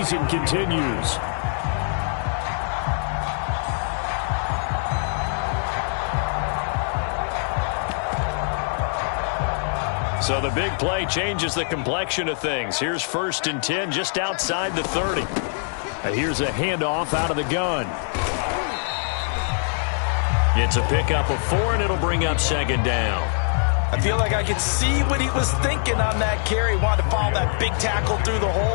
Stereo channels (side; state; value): right; silent; 61 dB below the other